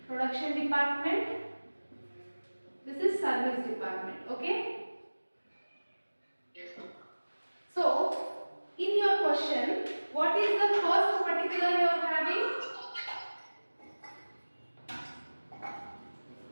department, this is service department, okay? Yes, ma'am. So, in your question, what is the first particular you are having?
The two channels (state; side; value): inverted; both; correlation -1.00